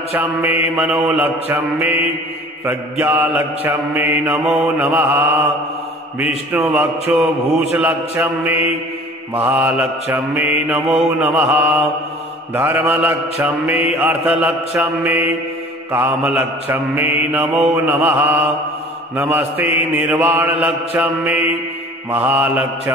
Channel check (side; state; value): both; normal; correlation 0.46